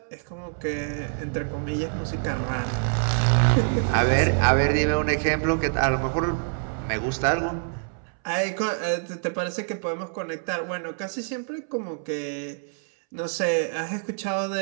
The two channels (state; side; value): silent; left; 61 dB below the other